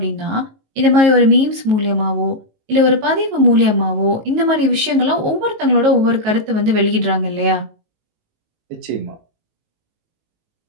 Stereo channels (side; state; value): left; late; 19 ms